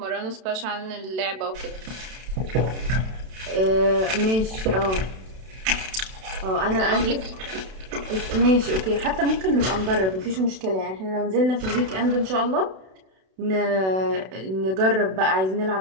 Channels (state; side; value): late; left; 32 ms